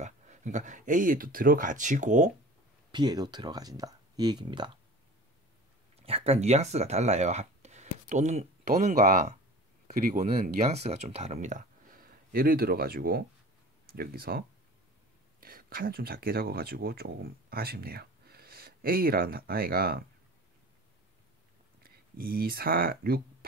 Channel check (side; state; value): both; normal; correlation 0.39